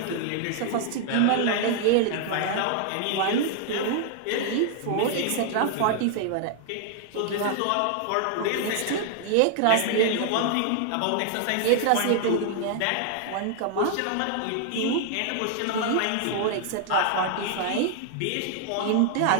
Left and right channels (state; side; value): different; both; correlation 0.00